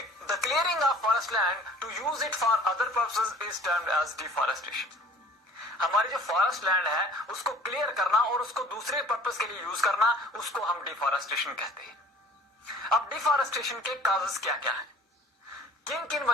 clearing of forest land to use it for other purposes is termed as deforestation. हमारी जो फॉरेस्ट लैंड है उसको क्लियर करना और उसको दूसरे पर्पस के लिए यूज करना, उसको हम डिफॉरेस्टेशन कहते हैं। अब डिफॉरेस्टेशन के काजेस क्या क्या है, किन किन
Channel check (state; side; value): normal; both; correlation 0.49